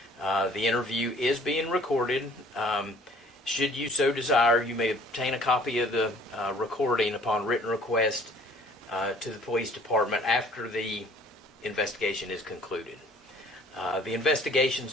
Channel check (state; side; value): normal; both; correlation 0.54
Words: The interview is being recorded. Should you so desire, you may obtain a copy of the recording upon written request to the police department after the investigation is concluded. The investigation